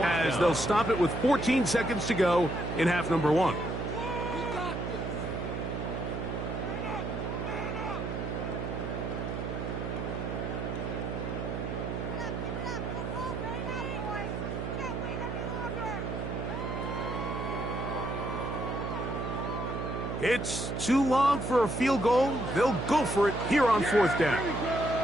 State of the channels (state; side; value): noise; right; hum, 4 dB below the sound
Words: they'll stop it with 14 seconds to go in half number 1. It's too long for a field goal. They'll go for it here on fourth down.